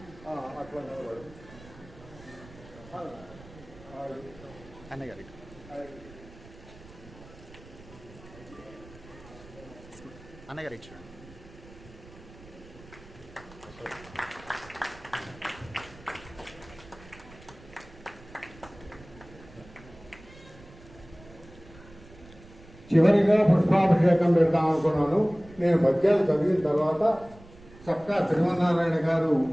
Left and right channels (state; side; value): noise; right; rumble, 21 dB below the sound